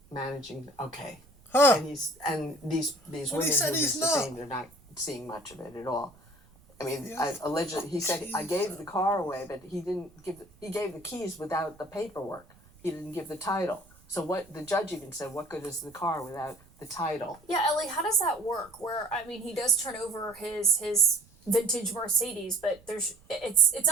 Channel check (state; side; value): noise; right; rumble, 27 dB below the sound